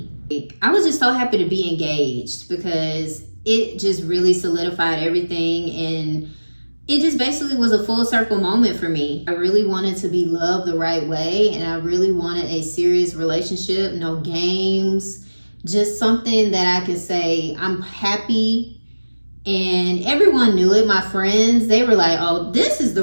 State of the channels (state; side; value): inverted; both; correlation -1.00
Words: I was just so happy to be engaged because it just really solidified everything, and it just basically was a full circle moment for me. I really wanted to be loved the right way, and I really wanted a serious relationship, no games, just something that I could say I'm happy. And everyone knew it. My friends, they were like, oh, this is the